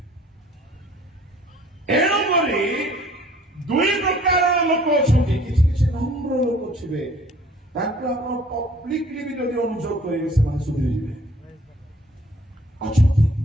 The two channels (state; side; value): normal; both; correlation 0.55